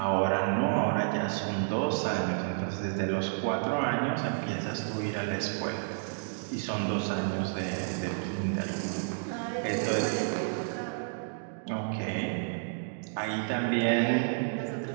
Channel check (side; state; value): left; silent; digital silence